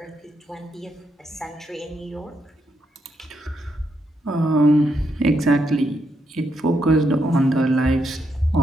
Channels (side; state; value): both; normal; correlation 0.80